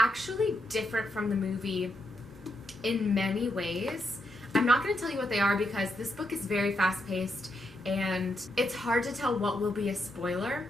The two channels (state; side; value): normal; both; correlation 0.81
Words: different from the movie in many ways. I'm not going to tell you what they are because this book is very fast-paced and it's hard to tell what will be a spoiler.